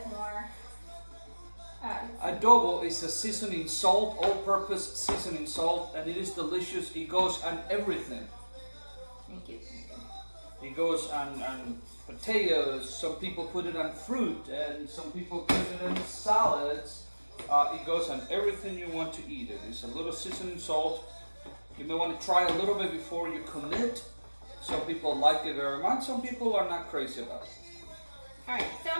more. Adobo is a seasoning salt, all-purpose seasoning salt, and it is delicious. It goes on everything. Thank you. It goes on potatoes. Some people put it on fruit, and some people put it in salads. It goes on everything you want to eat. It is a little seasoning salt. You may want to try a little bit before you commit. Some people like it very much. Some people are not crazy about it. Alright, so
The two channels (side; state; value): both; inverted; correlation -1.00